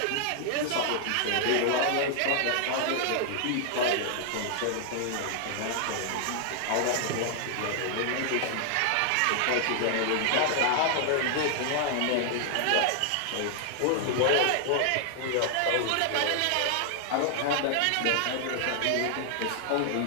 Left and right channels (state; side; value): different; both; correlation 0.00